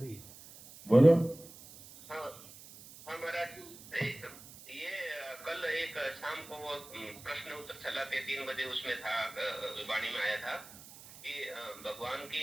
बोलो। हाँ हाँ महाराज ये कल एक शाम को वो प्रश्न उत्तर चला के 3 बजे उसमें था, वाणी में आया था कि भगवान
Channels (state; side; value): noise; right; hiss, 18 dB below the sound